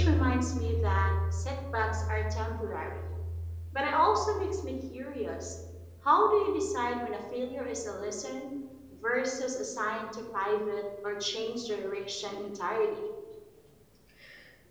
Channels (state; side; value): identical; both; correlation 1.00